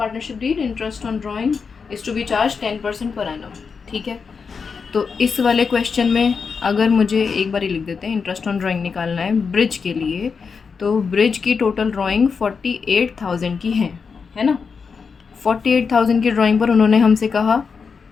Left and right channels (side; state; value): right; quieter; 5.5 dB